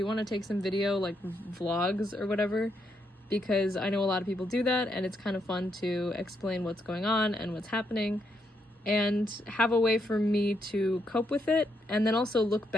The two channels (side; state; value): both; normal; correlation 0.78